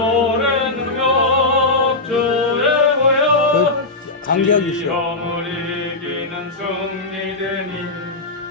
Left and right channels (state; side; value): quieter; right; 3.1 dB